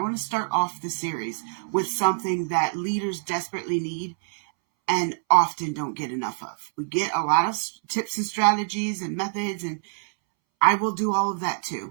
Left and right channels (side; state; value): left; silent; 61 dB below the other